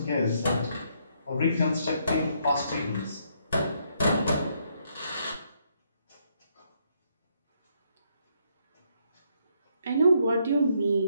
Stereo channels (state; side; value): inverted; both; correlation -0.73